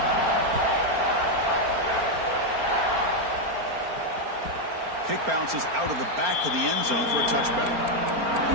Kick bounces out of the back of the end zone for a touchback.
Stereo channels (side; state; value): left; late; 4.4 ms